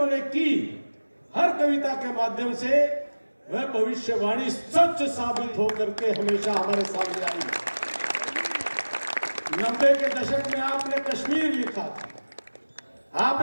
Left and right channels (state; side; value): inverted; both; correlation -1.00